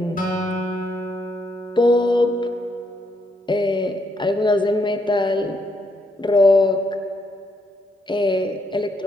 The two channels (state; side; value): normal; both; correlation 0.75